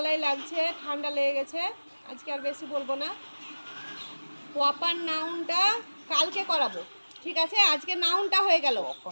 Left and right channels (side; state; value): both; inverted; correlation -1.00